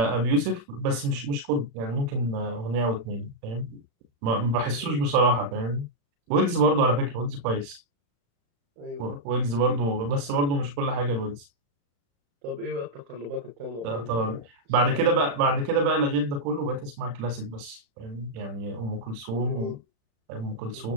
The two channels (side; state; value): left; late; 35 ms